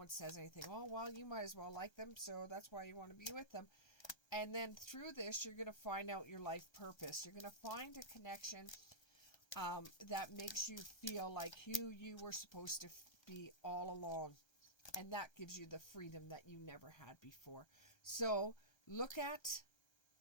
says anything. Oh, well, you might as well like them, so that's why you want to be with them. And then through this, you're going to find out your life purpose. You're going to find a connection that makes you feel like who you were supposed to be all along. And that gives you the freedom that you never had before. So look at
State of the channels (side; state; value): right; late; 1.3 ms